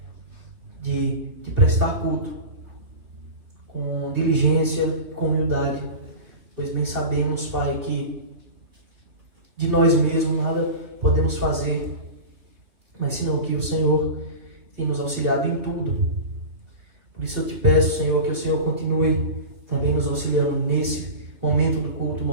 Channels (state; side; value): late; left; 3.0 ms